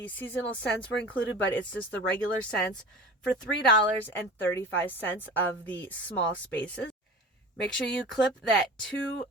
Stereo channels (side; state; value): both; normal; correlation 0.36